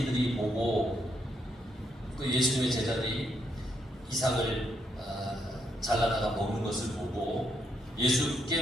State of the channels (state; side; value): normal; both; correlation 0.77